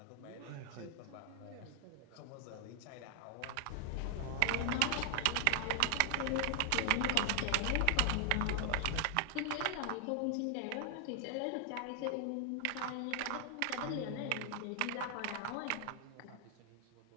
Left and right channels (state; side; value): different; both; correlation 0.00